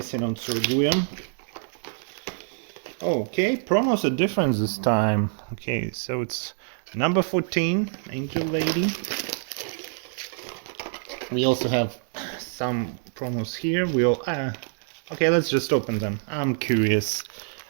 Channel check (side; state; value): left; silent; 61 dB below the other